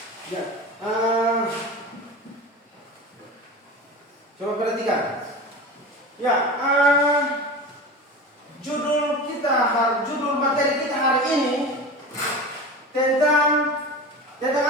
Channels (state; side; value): normal; both; correlation 0.30